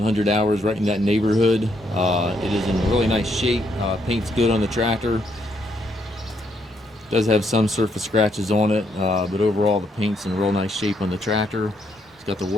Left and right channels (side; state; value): both; normal; correlation 0.74